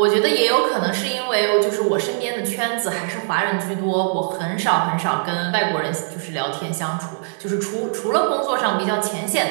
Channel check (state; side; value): silent; left; digital silence